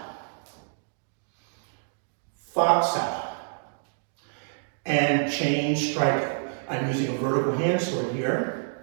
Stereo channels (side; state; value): left; silent; digital silence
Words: fa sao, and chain striking. I'm using a vertical hand sword here.